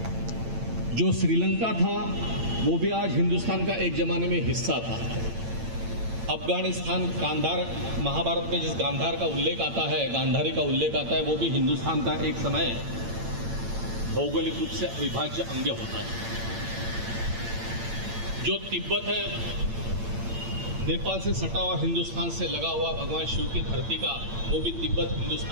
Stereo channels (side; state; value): left; late; 8.8 ms